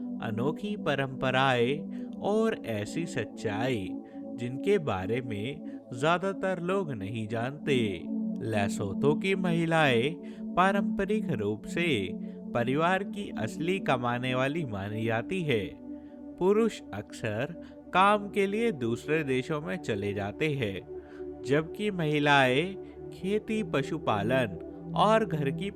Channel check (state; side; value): identical; both; correlation 1.00